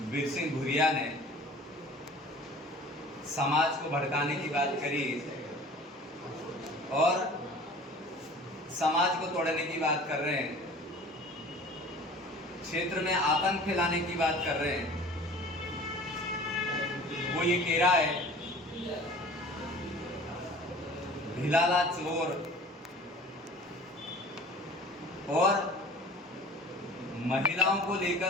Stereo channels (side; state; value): both; normal; correlation 0.44